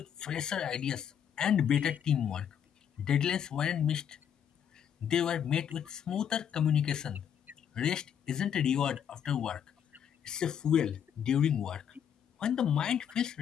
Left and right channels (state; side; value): quieter; right; 8.6 dB